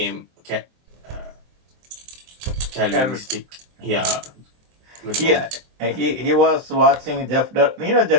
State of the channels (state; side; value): late; left; 23 ms